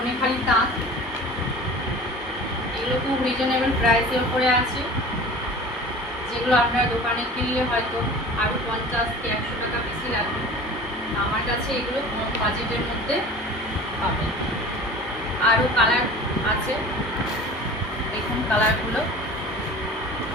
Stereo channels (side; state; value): both; normal; correlation 0.40